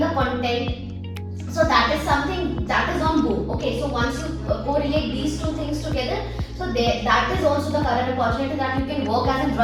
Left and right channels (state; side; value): identical; both; correlation 1.00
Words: content, so that is something that is on boom. Okay, so once you correlate these two things together, so that is also the current opportunity that you can work as a